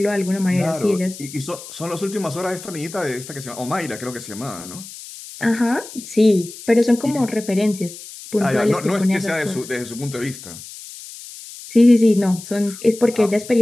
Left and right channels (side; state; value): left; noise; hiss, 15 dB below the sound